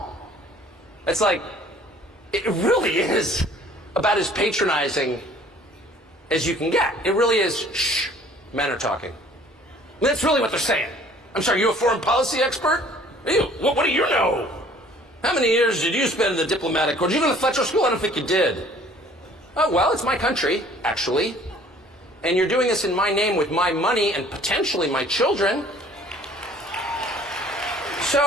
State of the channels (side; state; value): both; normal; correlation 0.53